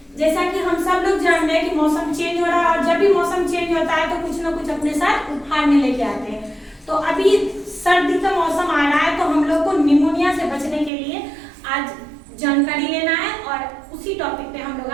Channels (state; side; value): drops out; left; at 10.9 s